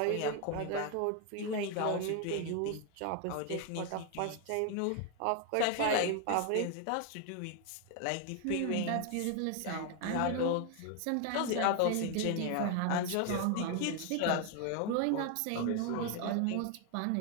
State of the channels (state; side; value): different; both; correlation 0.01